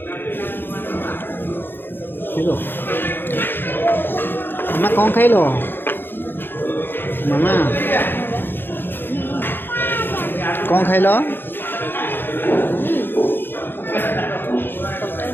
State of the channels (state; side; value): late; right; 0.10 ms